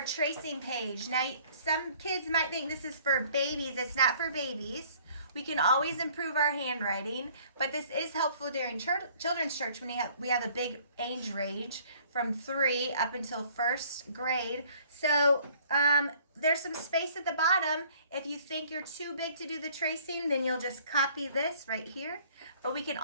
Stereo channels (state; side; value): inverted; both; correlation -0.57